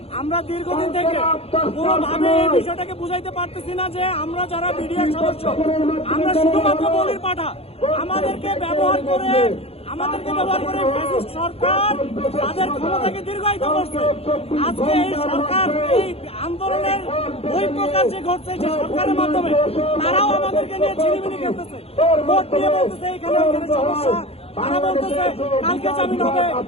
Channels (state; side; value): late; right; 0.29 ms